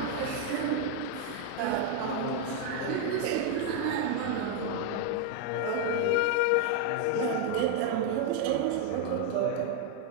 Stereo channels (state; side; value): different; both; correlation 0.00